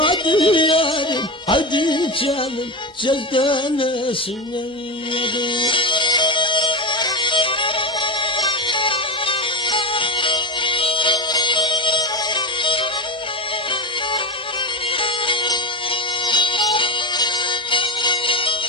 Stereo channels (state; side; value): normal; both; correlation 0.18